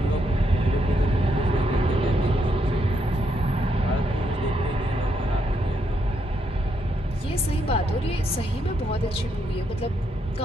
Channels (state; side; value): normal; both; correlation 0.77